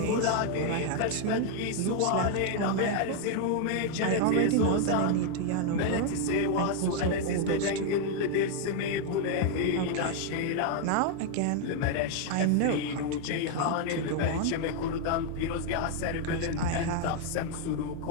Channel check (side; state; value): both; different; correlation 0.00